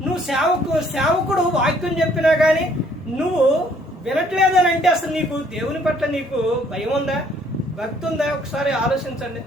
నువ్వు సేవకుడు వాక్యం చెప్పినా కానీ నువ్వు వినట్లేదు అని అంటే అసలు నీకు దేవుని పట్ల నీకు భయం ఉందా, భక్తి ఉందా? ఒకసారి ఆలోచించండి.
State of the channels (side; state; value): both; normal; correlation 0.63